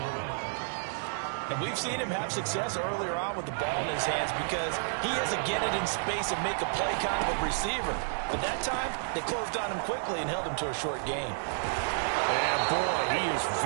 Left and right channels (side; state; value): left; silent; digital silence